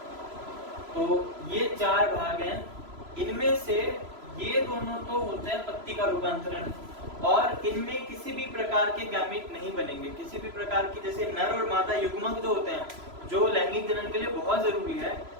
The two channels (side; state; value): left; late; 3.0 ms